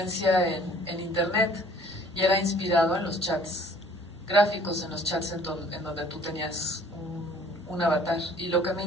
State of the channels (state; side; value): normal; both; correlation 0.54